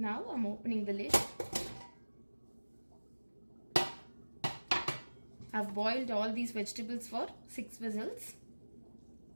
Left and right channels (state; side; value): inverted; both; correlation -1.00